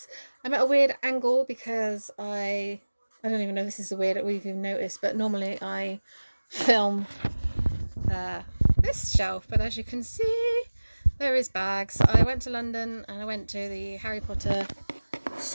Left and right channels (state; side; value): inverted; both; correlation -1.00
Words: I'm at a weird angle because I don't even know if this is a weird we've even noticed, but normally I film uh, this shelf, but as you can see, there is bags. I went to London and I went to the Harry Potter